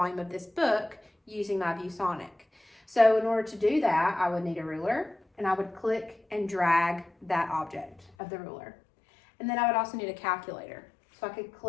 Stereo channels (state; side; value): drops out; right; at 8.1 s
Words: of this book using my ViewSonic. So in order to do that, I would need a ruler, and I would click and drag that object of the ruler. And then I would also need a calculator. So I could